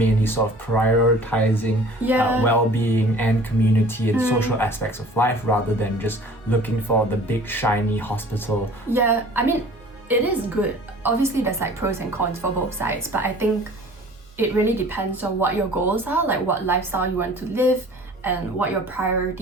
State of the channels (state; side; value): normal; both; correlation 0.47